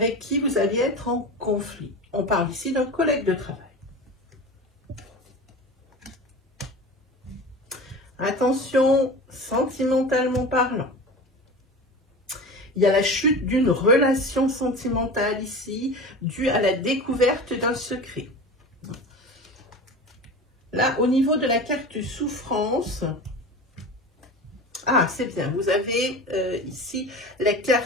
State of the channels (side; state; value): both; normal; correlation 0.32